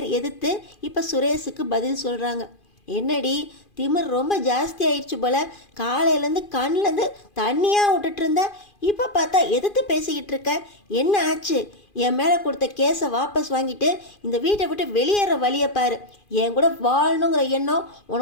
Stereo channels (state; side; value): late; right; 2.4 ms